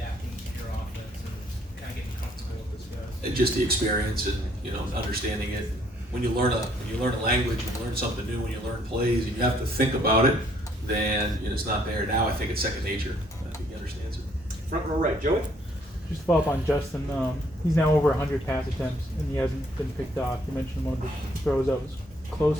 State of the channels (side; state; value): both; normal; correlation 0.65